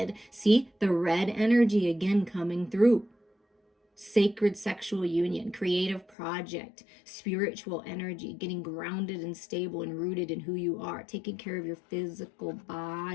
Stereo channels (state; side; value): drops out; right; at 6.2 s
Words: See the red energy again coming through. Sacred sexual union, creative project, spiritual energy, getting grounded and stable and rooted in who you are, taking care of your physical